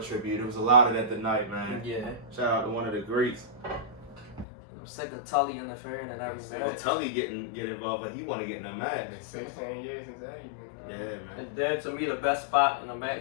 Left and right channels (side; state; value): right; drops out; at 4.5 s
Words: tribute. There was a lot of that tonight, man. Yeah. Shout out to one of the greats. I'm sick of Tully interfering in every Well, match. Tully get involved, like he want to get in a match. 16 years since Eddie. Yeah, man. And then to me the best spot in the